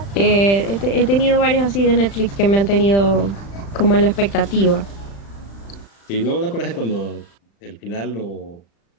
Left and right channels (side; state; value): right; late; 35 ms